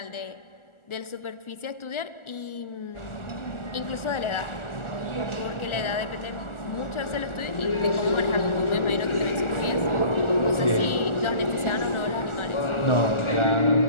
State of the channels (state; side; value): late; right; 1.4 ms